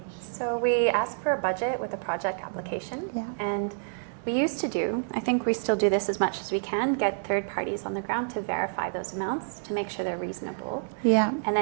So we ask for a budget with a project application, and we used to do, I think we still do this as much as we can, get third parties on the ground to verify those amounts to make sure they're reasonable. Yeah. And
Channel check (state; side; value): silent; left; digital silence